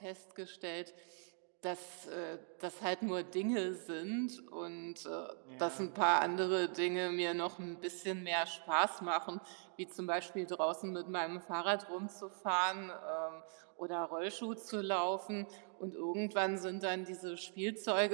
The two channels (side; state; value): left; silent; 51 dB below the other